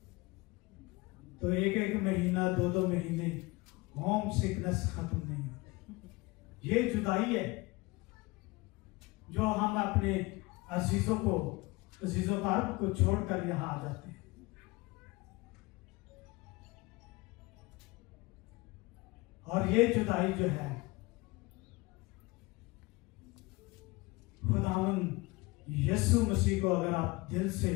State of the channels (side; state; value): right; quieter; 23.4 dB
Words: तो एक एक महीना, दो दो महीने होम सिकनेस खत्म नहीं होती। ये जुदाई है जो हम अपने अजीजों कारब को छोड़कर यहाँ आ जाते हैं। और ये जुदाई जो है, खुदावंद यीशु मसीह को अगर आप दिल से